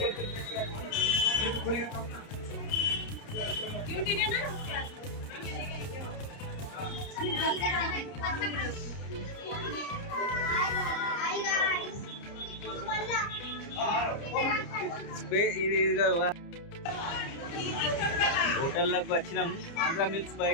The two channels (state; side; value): late; right; 30 ms